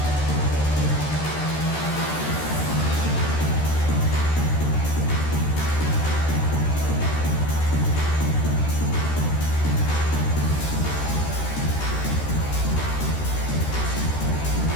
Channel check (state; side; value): late; right; 13 ms